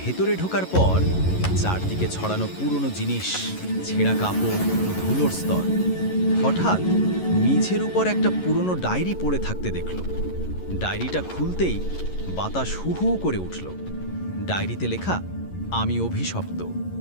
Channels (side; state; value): right; late; 11 ms